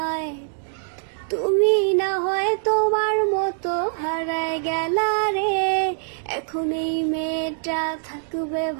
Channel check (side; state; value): left; silent; digital silence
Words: তুমি না হয় তোমার মতো হারায় গেলা রে, এখন এই মেয়েটা থাকবে